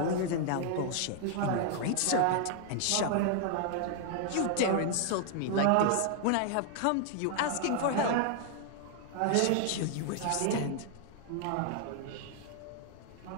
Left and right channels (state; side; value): different; both; correlation 0.00